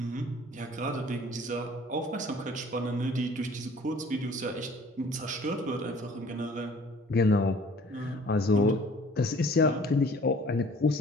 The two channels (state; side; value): normal; both; correlation 0.52